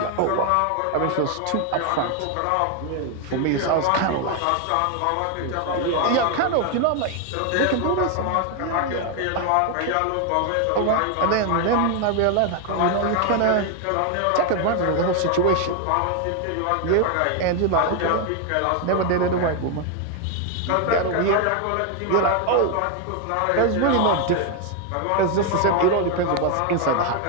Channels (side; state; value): both; different; correlation 0.01